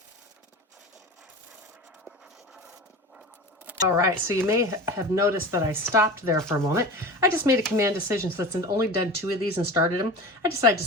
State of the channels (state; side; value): normal; both; correlation 0.32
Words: All right, so you may have noticed that I stopped there for a moment. I just made a command decision since I've only done 2 of these and started them. I decided to